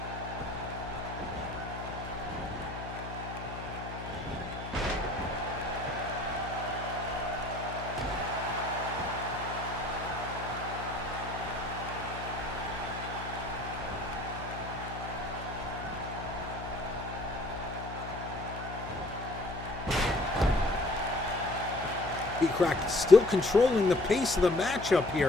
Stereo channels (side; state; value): left; noise; hum, 10 dB below the sound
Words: Pete Crack still controlling the pace of the matchup